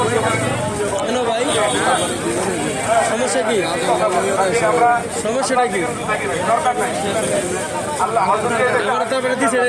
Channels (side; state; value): both; identical; correlation 1.00